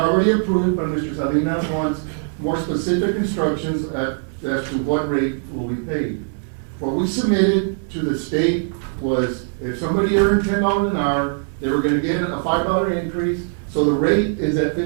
approved, but Mr. Salinas wants more specific instructions as to what rate will be paid. What we submitted to the state was if somebody earned $10 an hour, they were gonna get a $5 increase. So the rate is at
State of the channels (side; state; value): left; silent; digital silence